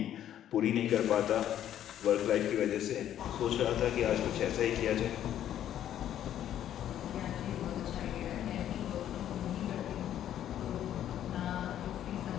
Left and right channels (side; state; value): right; quieter; 11.1 dB